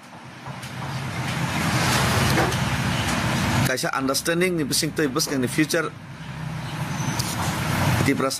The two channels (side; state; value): both; identical; correlation 1.00